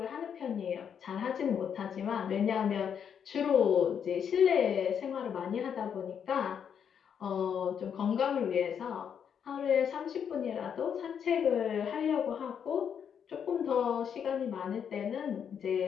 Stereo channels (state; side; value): quieter; right; 7.8 dB